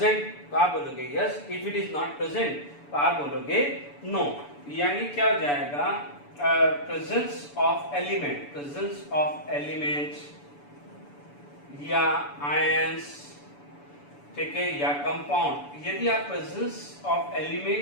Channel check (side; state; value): right; late; 6.9 ms